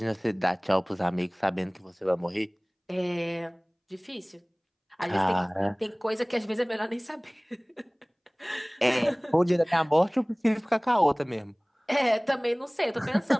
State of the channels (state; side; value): identical; both; correlation 1.00